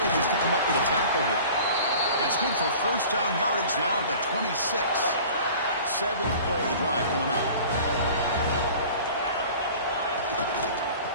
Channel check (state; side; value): inverted; both; correlation -0.43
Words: just to come up with a tackle here. That's good for first down yardage now at 26. 7th play of the drive coming up.